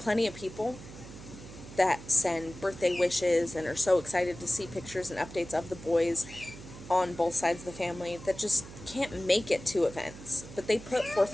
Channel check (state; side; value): noise; right; hum, 15 dB below the sound